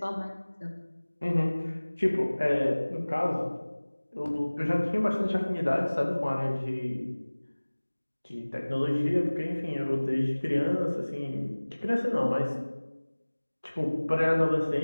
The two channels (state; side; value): inverted; both; correlation -1.00